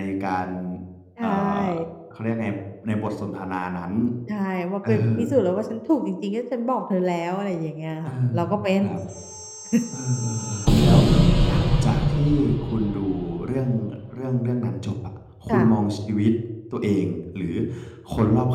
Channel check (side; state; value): both; identical; correlation 1.00